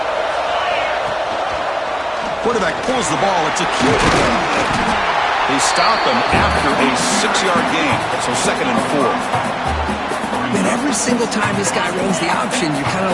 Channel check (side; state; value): both; identical; correlation 1.00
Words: Quarterback pulls the ball. It's a cute. They stop him after a 6-yard gain. So 2nd and 4. And every single time this guy runs the option, you're kind of